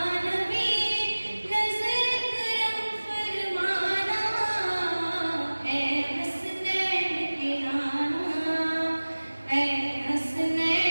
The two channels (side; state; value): both; inverted; correlation -1.00